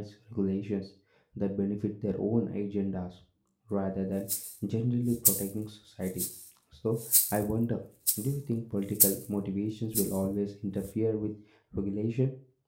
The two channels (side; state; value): both; identical; correlation 1.00